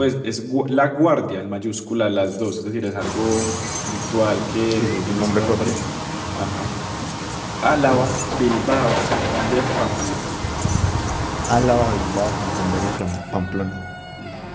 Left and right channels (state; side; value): identical; both; correlation 1.00